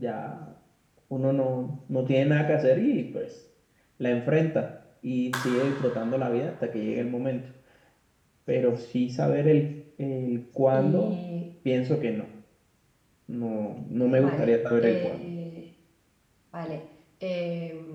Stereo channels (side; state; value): both; identical; correlation 1.00